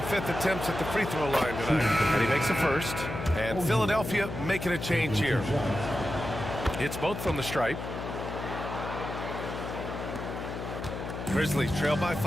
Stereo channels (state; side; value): noise; left; hum, 7 dB below the sound